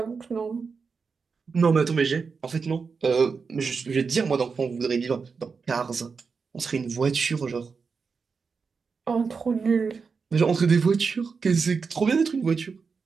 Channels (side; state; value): left; quieter; 5.2 dB